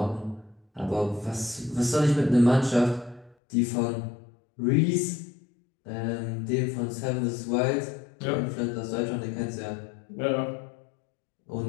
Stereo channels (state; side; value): drops out; right; at 3.4 s